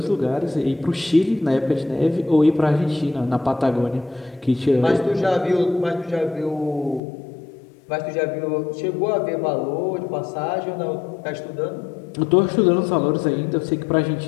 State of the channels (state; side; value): drops out; right; at 7.0 s